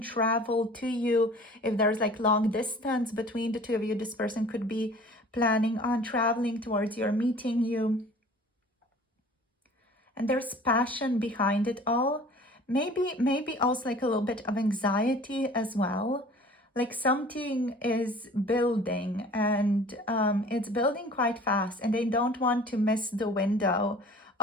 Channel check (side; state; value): both; normal; correlation 0.47